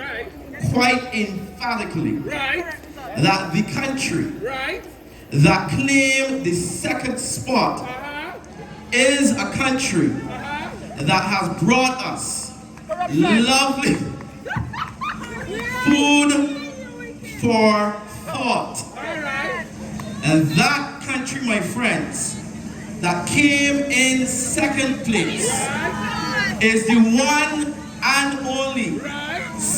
quite emphatically that the country that claimed the second spot is a country that has brought us lovely food for thought. And that country, my friends, that came in second place is the one and only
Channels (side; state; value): both; identical; correlation 1.00